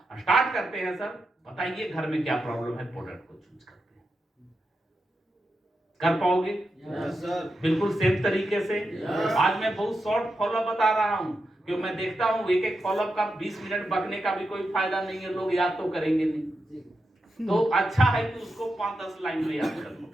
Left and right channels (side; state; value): both; normal; correlation 0.88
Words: स्टार्ट करते हैं सर, बताइए घर में क्या प्रॉब्लम है, प्रोडक्ट को चूज करते हैं। कर पाओगे? बिल्कुल सेम तरीके से। आज मैं बहुत शॉर्ट फॉलोअप बता रहा हूं क्योंकि मैं देखता हूं एक फॉलोअप का 20 मिनट बकने का भी कोई फायदा नहीं है, लोग याद तो करेंगे नहीं। तो अच्छा है कि उसको 5-10 लाइन में याद कर